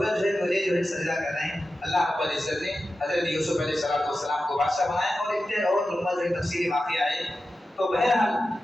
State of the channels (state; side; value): normal; both; correlation 0.92